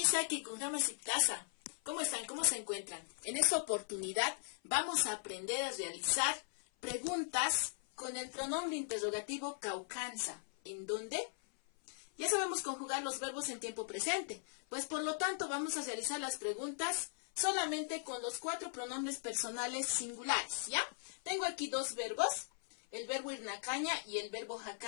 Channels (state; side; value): silent; right; 52 dB below the other